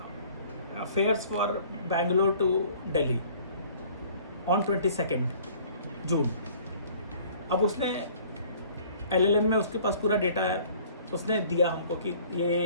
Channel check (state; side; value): inverted; both; correlation -0.53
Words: fares for Bangalore to Delhi on 22 June. अब उसने LLM में उसके पास पूरा डेटा है, उसने दिया हमको कि